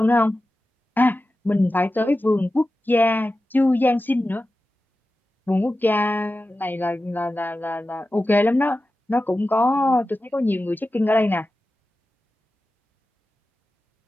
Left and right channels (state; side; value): normal; both; correlation 0.93